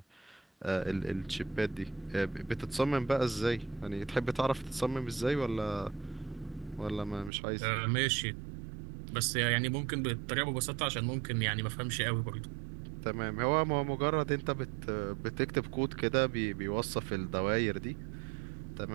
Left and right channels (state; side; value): drops out; left; at 7.3 s